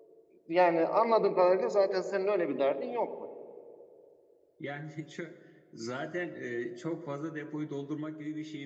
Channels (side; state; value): both; identical; correlation 1.00